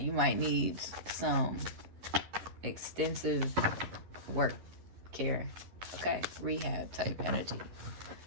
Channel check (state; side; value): late; left; 11 ms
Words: might need some extensive work care, okay, rehab type energy.